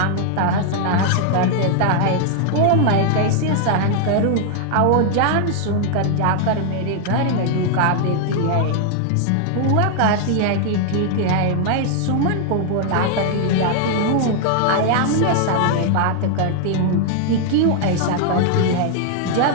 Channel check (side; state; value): both; different; correlation 0.00